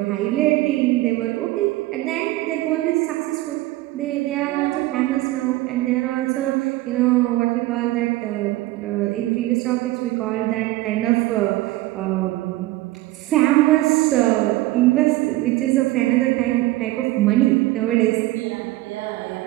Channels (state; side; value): quieter; left; 18.0 dB